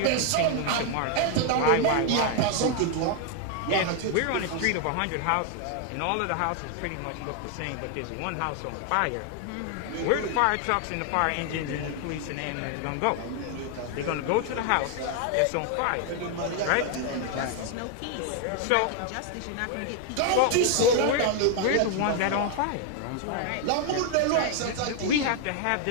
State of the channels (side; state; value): both; different; correlation 0.00